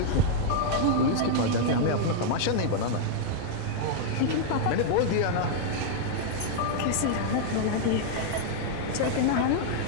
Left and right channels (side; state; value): both; different; correlation -0.01